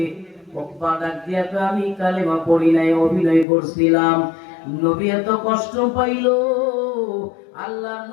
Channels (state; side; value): drops out; right; at 3.5 s